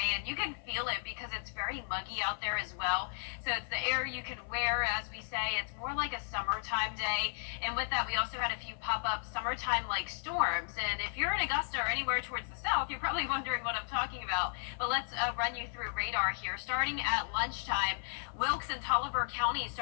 and you can feel it because it's very muggy out there as well. So it's the air you can wear, as we say. It's more like a summertime day. And with that, we also had a few pop-up summertime-like storms. And if you're in Augusta or anywhere towards the south, you're probably wondering what I'm talking about. But let's run you through radar here. Starting at lunchtime, Wilkes and Tolliver County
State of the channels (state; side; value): silent; right; 55 dB below the other